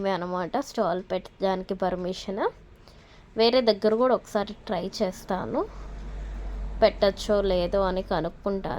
అనమాట స్టాల్ పెట్టడానికి పర్మిషన్. వేరే దగ్గర కూడా ఒకసారి ట్రై చేస్తాను, పెట్టచ్చో లేదో అని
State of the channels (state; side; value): identical; both; correlation 1.00